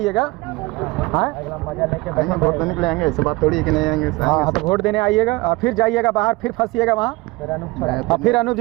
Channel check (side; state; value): left; quieter; 22.6 dB